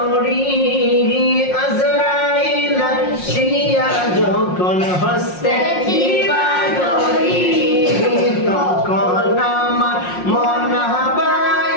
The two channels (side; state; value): right; late; 5.6 ms